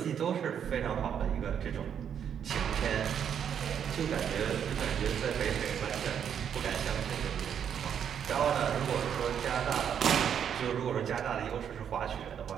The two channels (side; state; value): left; quieter; 8.4 dB